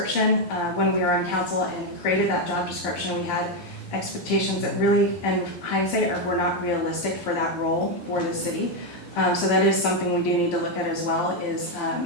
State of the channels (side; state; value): right; late; 11 ms